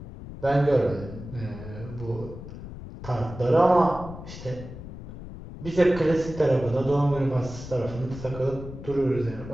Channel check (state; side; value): noise; left; rumble, 12 dB below the sound